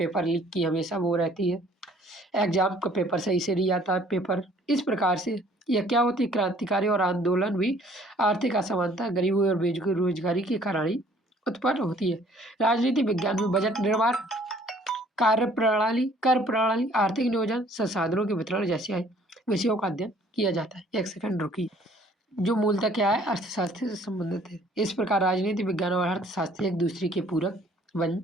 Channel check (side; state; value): both; normal; correlation 0.58